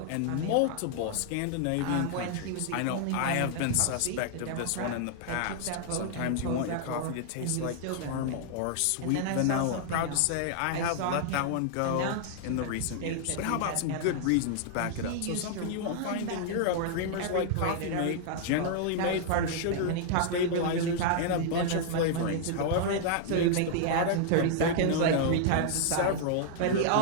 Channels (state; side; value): different; both; correlation -0.01